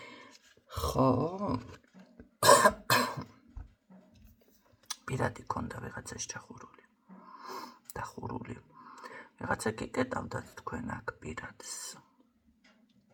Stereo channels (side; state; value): both; identical; correlation 1.00